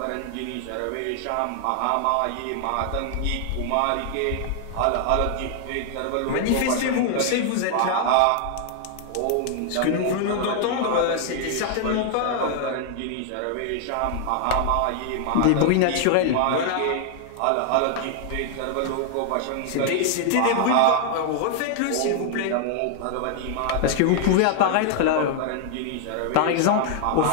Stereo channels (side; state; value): both; different; correlation 0.00